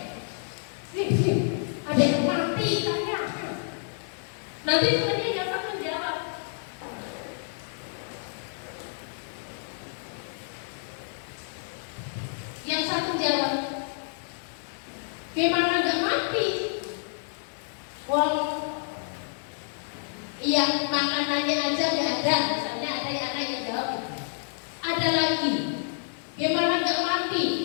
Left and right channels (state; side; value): silent; right; 59 dB below the other